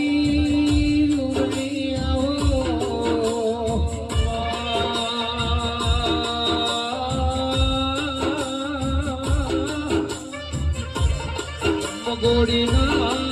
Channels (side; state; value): both; identical; correlation 1.00